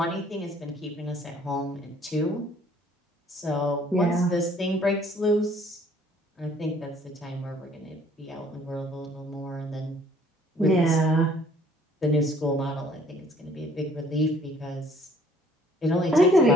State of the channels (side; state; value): both; normal; correlation 0.58